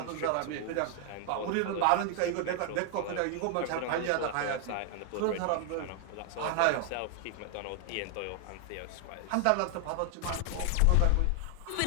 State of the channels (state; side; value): different; both; correlation 0.00